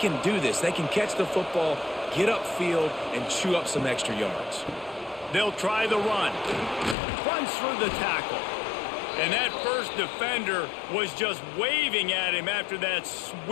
do this. They can catch the football, get upfield, and chew up some extra yards. They'll try the run. Punts for the tackle. And that first defender was just waving at him after that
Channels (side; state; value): right; drops out; at 7.0 s